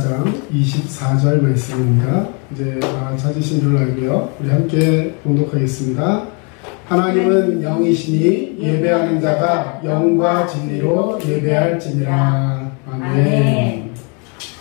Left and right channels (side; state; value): right; quieter; 34.9 dB